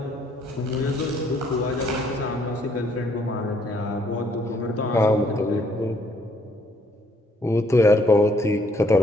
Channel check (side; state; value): both; normal; correlation 0.67